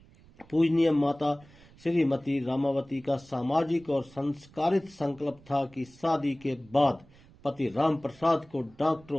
पूजनीय माता श्रीमती रामावती का सामाजिक और संस्कारित संकल्प था कि शादी के बाद पति राम प्रसाद को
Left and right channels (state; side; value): noise; right; rumble, 25 dB below the sound